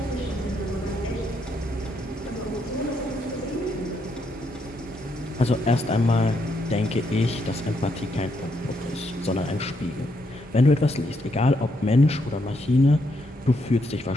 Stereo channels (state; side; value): normal; both; correlation 0.76